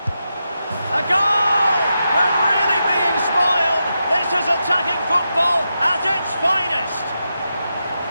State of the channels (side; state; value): both; inverted; correlation -0.87